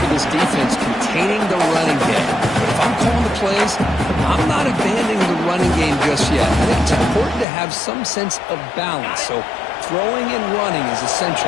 this defense containing the running game. But if I'm calling the plays, I'm not abandoning the running game just yet. I think it's important to have some sense of balance. So throwing and running is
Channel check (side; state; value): right; drops out; at 7.5 s